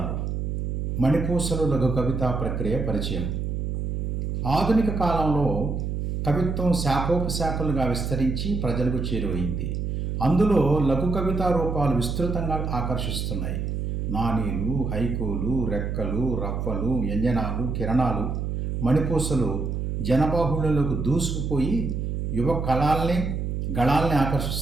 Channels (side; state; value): right; noise; hum, 2 dB below the sound